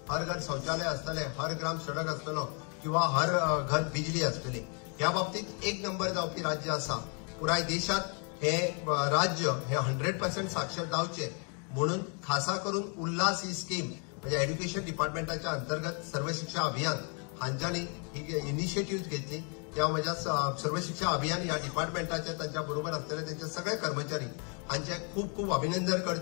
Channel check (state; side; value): quieter; right; 38.4 dB